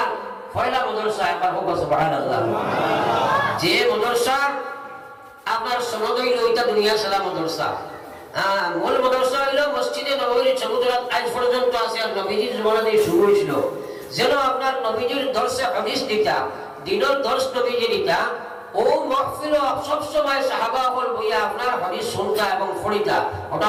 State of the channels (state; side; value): identical; both; correlation 1.00